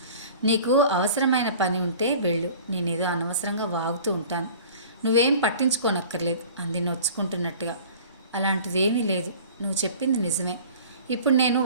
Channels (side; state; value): both; inverted; correlation -0.45